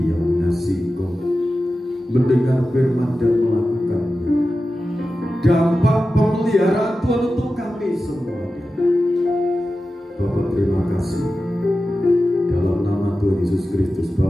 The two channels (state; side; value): normal; both; correlation 0.93